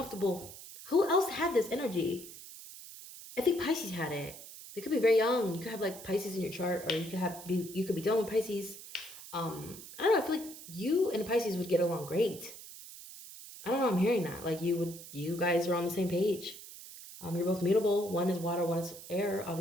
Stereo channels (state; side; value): noise; right; hiss, 14 dB below the sound